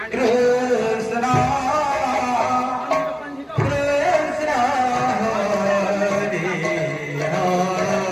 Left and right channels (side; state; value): both; identical; correlation 1.00